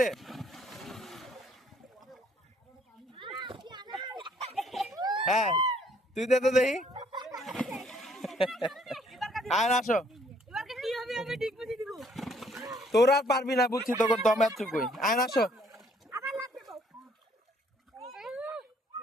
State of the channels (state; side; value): normal; both; correlation 0.64